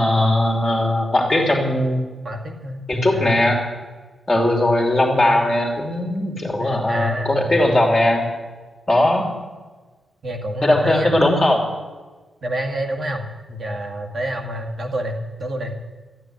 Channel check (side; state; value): both; normal; correlation 0.90